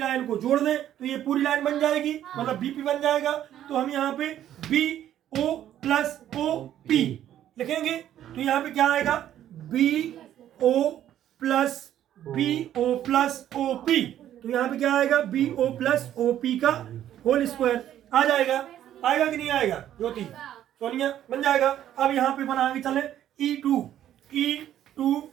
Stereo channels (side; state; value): left; quieter; 11.4 dB